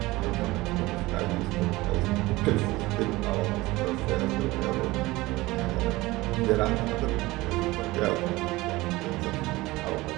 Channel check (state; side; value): quieter; left; 20.0 dB